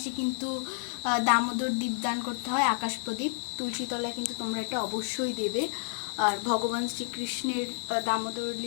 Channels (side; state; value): right; silent; digital silence